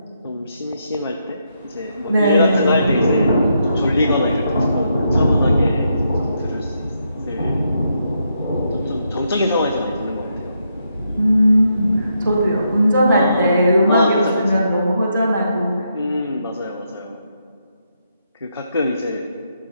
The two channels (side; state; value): both; inverted; correlation -0.79